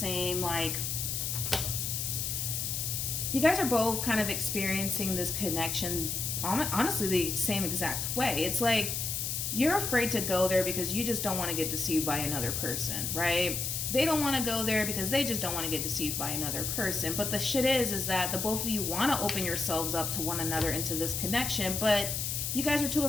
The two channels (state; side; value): noise; left; hiss, 1 dB below the sound